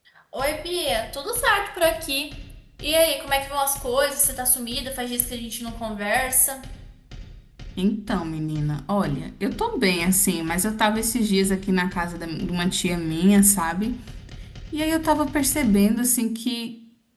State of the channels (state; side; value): identical; both; correlation 1.00